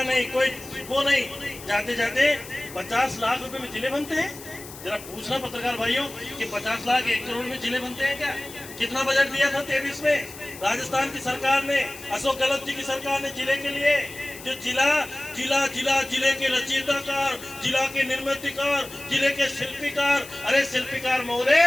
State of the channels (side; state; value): left; noise; hiss, 15 dB below the sound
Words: नहीं, कोई वो नहीं, जाते जाते 50 लाख रुपए में जिले बनते हैं। जरा पूछना पत्रकार भाइयों कि 50 लाख 1 करोड़ में जिले बनते हैं क्या? कितना बजट दिया था 23 में राजस्थान की सरकार ने, अशोक गहलोत जी की सरकार ने जिले के लिए? जो जिले के रचयिताकार, जिला के निर्मितकार, जिले के शिल्पीकार, अरे शिल्पीकार महोदय